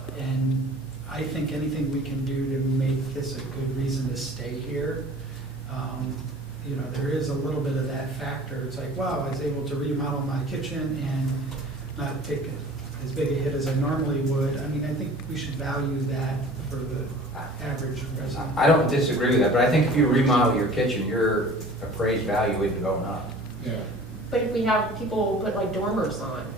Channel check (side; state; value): both; normal; correlation 0.45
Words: I think anything we can do to make this a good reason to stay here, there is a little bit of that factor. It's like, wow, I was able to remodel my kitchen and not take as big a hit as I normally would. I mean, I think we should value that for the average resident. I don't disagree with that, but I think if you remodel your kitchen, your appraised value isn't going up. Yeah. But if we have people put like dormers on,